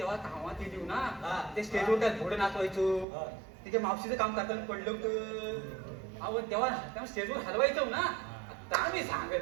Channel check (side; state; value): left; drops out; at 3.1 s